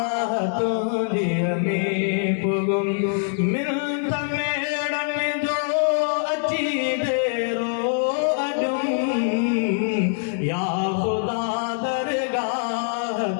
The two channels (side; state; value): right; silent; digital silence